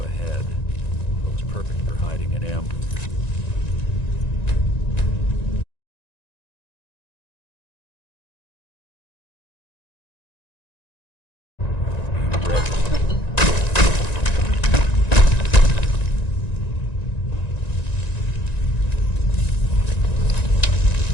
Looks perfect for hiding an ambush. Be ready.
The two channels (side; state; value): right; late; 1.9 ms